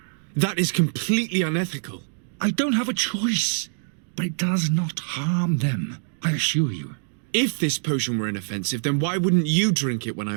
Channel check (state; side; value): silent; left; digital silence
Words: That is completely unethical. I don't have a choice, but it does not harm them, I assure you. If this potion were inoffensive, then why wouldn't you drink it when I